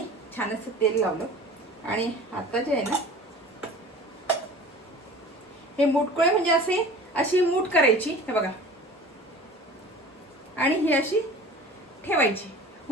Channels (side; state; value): both; normal; correlation 0.41